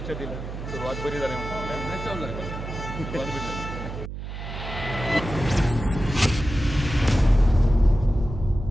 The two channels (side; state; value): right; noise; hum, 8 dB below the sound